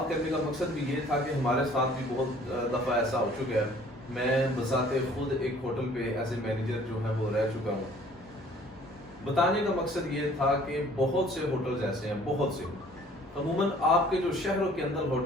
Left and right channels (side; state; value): both; normal; correlation 0.54